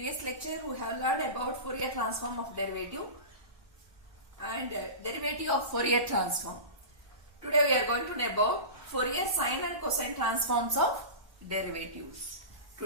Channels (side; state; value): left; late; 1.2 ms